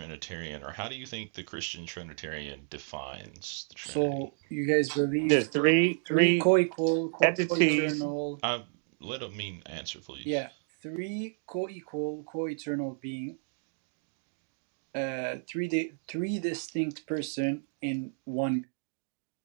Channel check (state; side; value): silent; left; digital silence